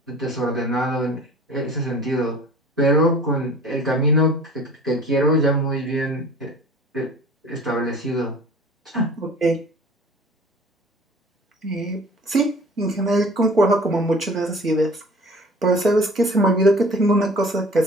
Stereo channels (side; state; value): both; normal; correlation 0.45